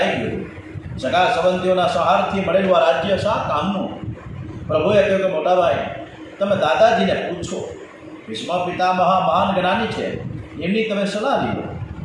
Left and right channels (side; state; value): both; identical; correlation 1.00